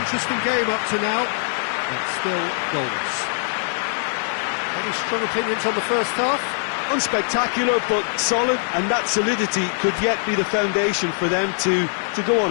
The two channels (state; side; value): silent; right; digital silence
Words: interesting game up to now, but still goals. Any strong opinions on the first half? Unspectacular, but solid, and that solidity could yet be the foundation for them to go on